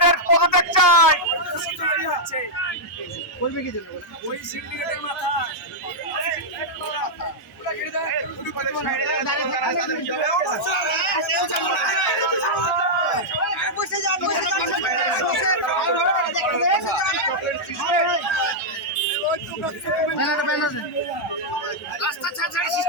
পদত্যাগ চাই। ওই সিন্ডিকেটের মাথা রাস্তা ছাড়া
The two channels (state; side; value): normal; both; correlation -0.05